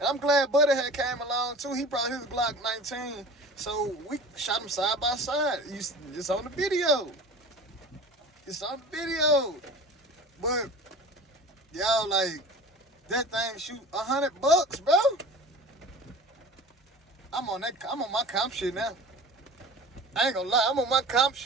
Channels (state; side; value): normal; both; correlation 0.39